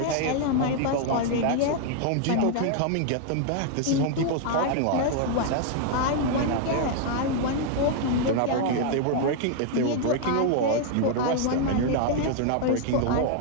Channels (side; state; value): both; different; correlation 0.00